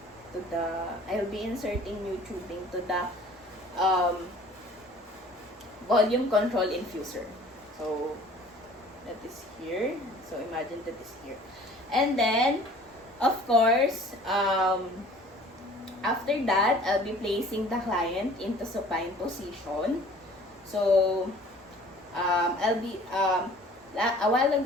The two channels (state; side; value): normal; both; correlation 0.50